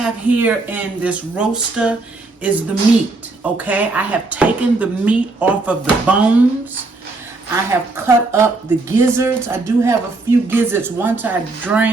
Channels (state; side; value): quieter; left; 3.4 dB